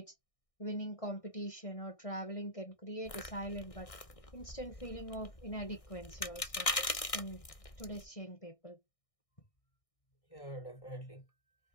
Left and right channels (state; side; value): late; right; 1.6 ms